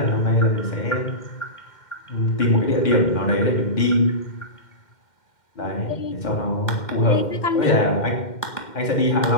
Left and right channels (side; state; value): right; late; 2.1 ms